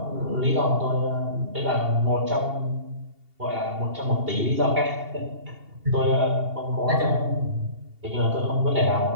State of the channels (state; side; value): late; left; 2.8 ms